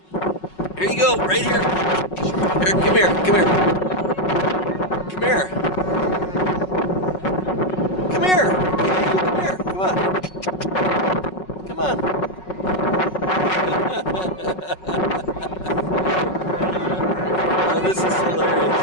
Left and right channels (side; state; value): right; late; 5.4 ms